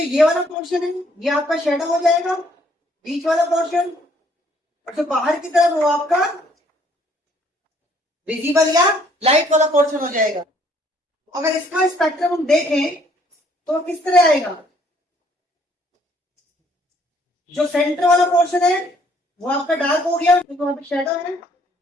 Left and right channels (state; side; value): normal; both; correlation 0.64